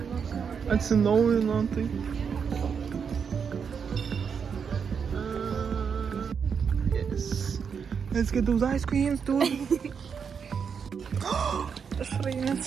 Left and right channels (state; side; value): quieter; left; 6.5 dB